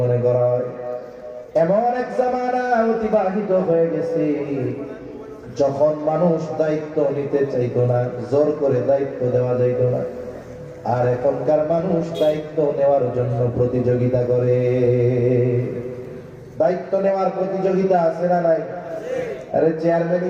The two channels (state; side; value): identical; both; correlation 1.00